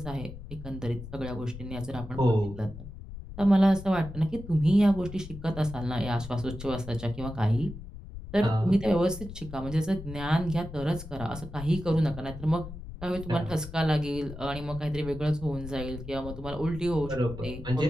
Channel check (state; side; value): noise; left; rumble, 12 dB below the sound